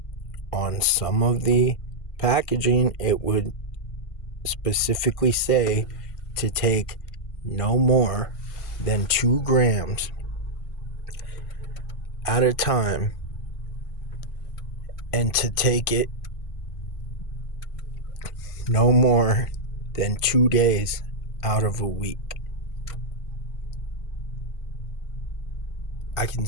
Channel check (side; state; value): right; late; 1.5 ms